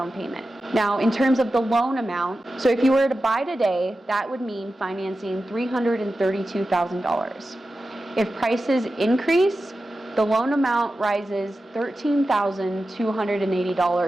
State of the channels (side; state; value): both; normal; correlation 0.93